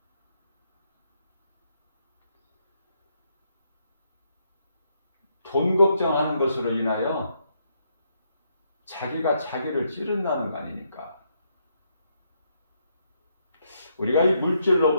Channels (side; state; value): both; inverted; correlation -0.76